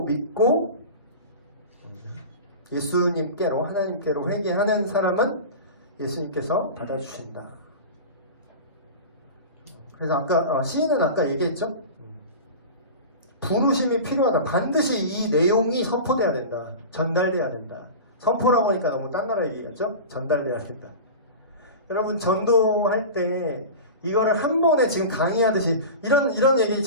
믿고 예수님께로, 하나님께로 회개하는 사람은 예수님께서 받아주신다. 그래서 시인은 아까 얘기했죠? 부르심이 필요하다. 반드시 이 내용이 선포돼야 된다. 전달돼야 된다. 선포라고 하니까 너무 딴 나라 얘기겠죠? 전달돼야 된다. 여러분 전도할 때 이거를 한 번에 지금 강의하듯이 이런 얘기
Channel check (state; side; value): inverted; both; correlation -0.31